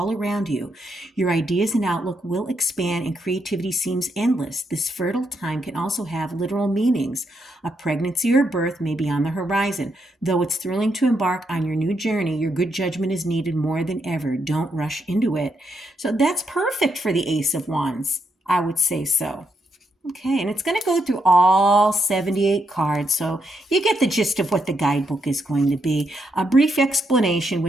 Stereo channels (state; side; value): normal; both; correlation 0.79